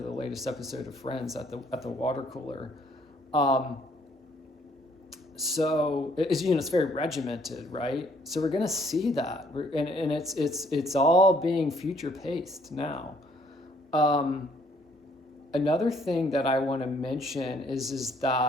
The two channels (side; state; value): both; normal; correlation 0.64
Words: latest episode of Friends at the water cooler. So it's, you know, it's very regimented, right? So we're going to see that, and it's all being future paced now. Another thing that I want to mention is